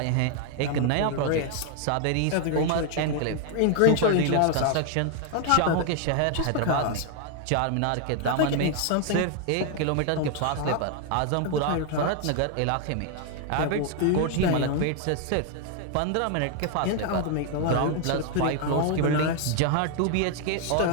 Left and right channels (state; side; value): different; both; correlation 0.00